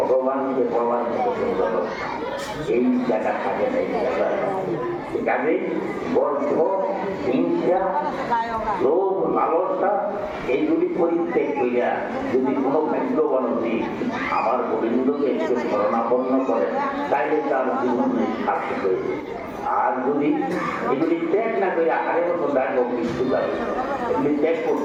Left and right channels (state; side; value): identical; both; correlation 1.00